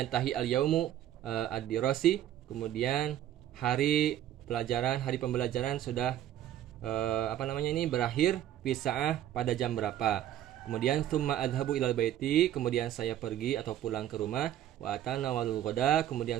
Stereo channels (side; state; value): left; quieter; 11.9 dB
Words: al-yaumu ad-dirasi, kemudian hari pembelajaran sudah berakhir fi sa'ah pada jam berapa. Kemudian tsumma adhabu ilal baiti, kemudian saya pergi atau pulang ke rumah. Wa atanawalul ghada,